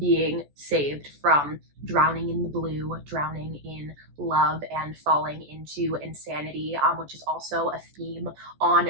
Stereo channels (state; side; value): late; left; 14 ms